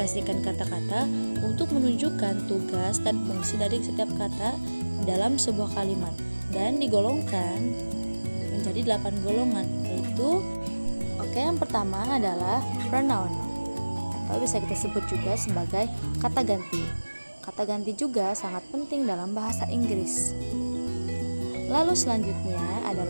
kata-kata untuk menunjukkan tugas dan fungsi dari setiap kata dalam sebuah kalimat dan digolongkan menjadi 8 golongan, yaitu yang pertama adalah pronoun atau bisa kita sebut juga sebagai kata ganti. Kata ganti juga sangat penting dalam bahasa Inggris. Lalu selanjutnya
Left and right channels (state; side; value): inverted; both; correlation -1.00